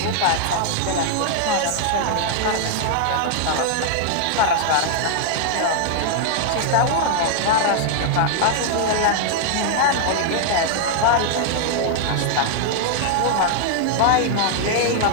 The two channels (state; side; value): different; both; correlation 0.00